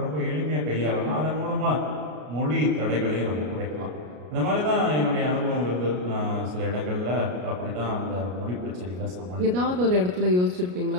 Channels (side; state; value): left; late; 33 ms